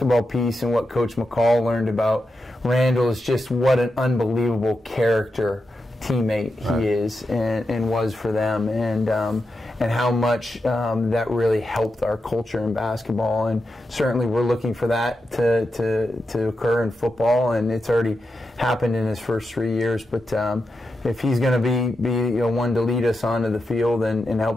piece and what Coach McCall learned about Randall is just what an unbelievable character teammate he is and was for them, and how much that really helped our culture in basketball. And certainly we're looking for that to occur in football, and it's already happened in his first 3 years. But if he's going to be one to lead us onto the field and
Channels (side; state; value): both; normal; correlation 0.88